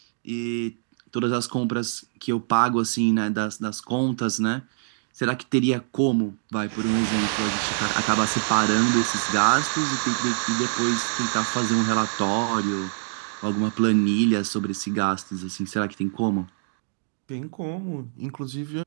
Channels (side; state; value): left; silent; digital silence